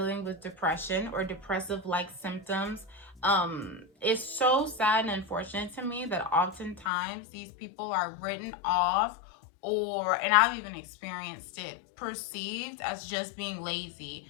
with depression or depressive-like symptoms. It's so sad and unfortunate to me that oftentimes these people are written off, and I've even experienced it, perceived as just being lazy,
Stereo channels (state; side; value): drops out; right; at 6.9 s